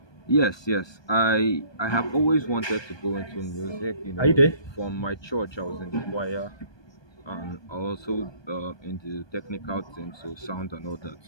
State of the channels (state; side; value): late; right; 1.2 ms